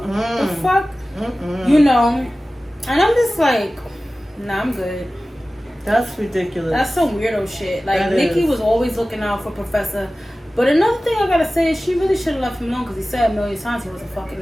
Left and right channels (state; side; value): normal; both; correlation 0.96